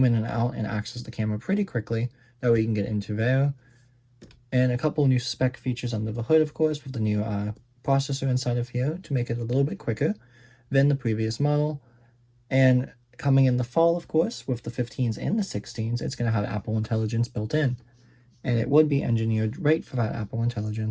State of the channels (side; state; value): both; identical; correlation 1.00